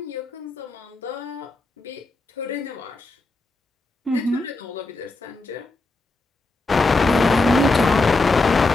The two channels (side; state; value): right; quieter; 3.2 dB